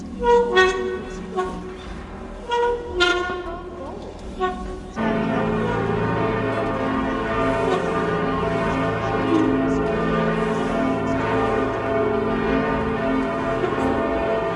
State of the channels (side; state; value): both; identical; correlation 1.00